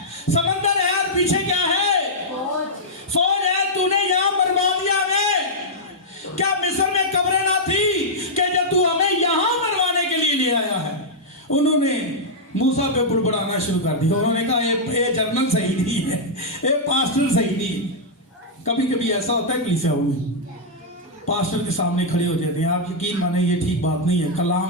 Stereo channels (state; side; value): normal; both; correlation -0.07